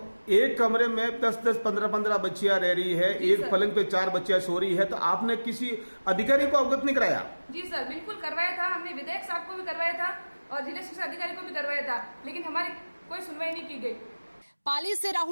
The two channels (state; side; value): inverted; both; correlation -1.00